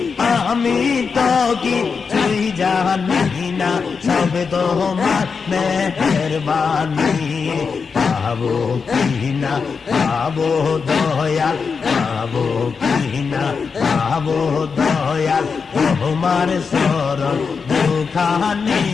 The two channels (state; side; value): quieter; right; 5.4 dB